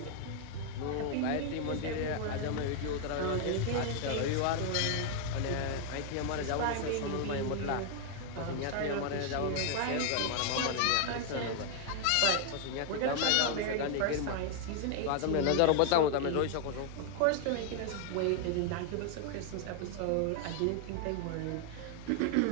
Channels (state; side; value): different; both; correlation 0.00